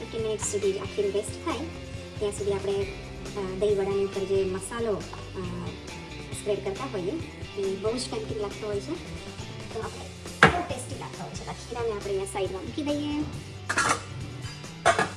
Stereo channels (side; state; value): both; identical; correlation 1.00